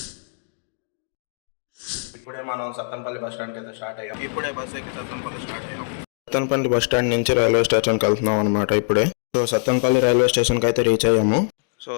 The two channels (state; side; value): silent; right; digital silence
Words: ఇప్పుడే మనం సత్తెనపల్లి బస్ స్టాండ్కి అయితే స్టార్ట్ అయ్యాం. ఇప్పుడే బస్ ఎక్కి సత్తెనపల్లి స్టార్ట్ అయ్యాం. సత్తెనపల్లి బస్ స్టాండ్ నుంచి రైల్వే స్టేషన్కి వెళ్తున్నాం అనమాట ఇప్పుడే. సో సత్తెనపల్లి రైల్వే స్టేషన్కి అయితే రీచ్ అయ్యాము. సో